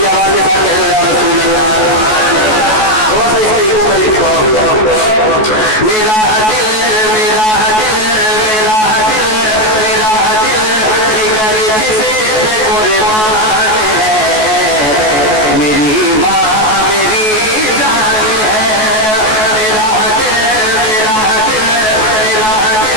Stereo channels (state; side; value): late; right; 14 ms